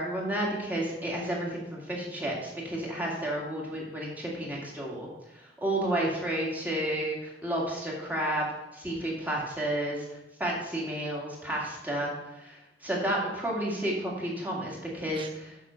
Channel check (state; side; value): normal; both; correlation 0.48